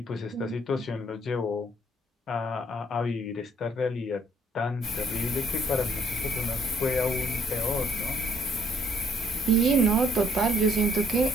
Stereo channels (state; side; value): normal; both; correlation 0.65